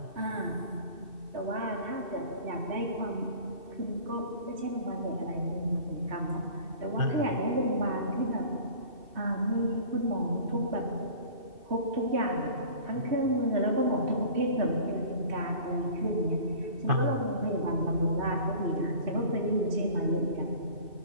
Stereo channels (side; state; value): left; late; 2.6 ms